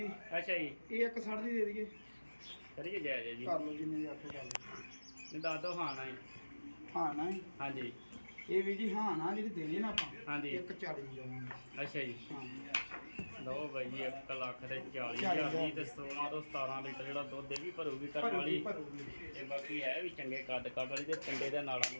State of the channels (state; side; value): inverted; both; correlation -1.00